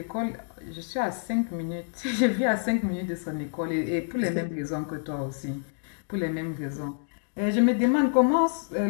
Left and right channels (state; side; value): silent; right; digital silence